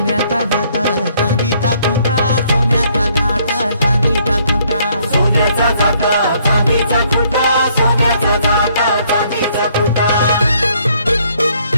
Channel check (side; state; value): both; inverted; correlation -0.66